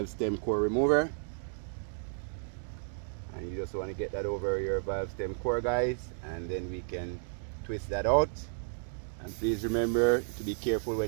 stem core remover. And you just want to get that over your valve stem core guys, and then we can twist that out. And please remember to be careful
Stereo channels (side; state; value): left; silent; digital silence